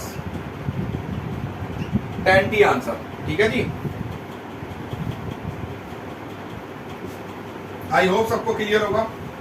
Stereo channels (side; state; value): both; identical; correlation 1.00